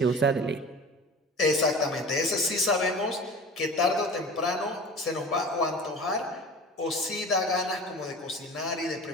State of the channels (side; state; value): both; normal; correlation 0.37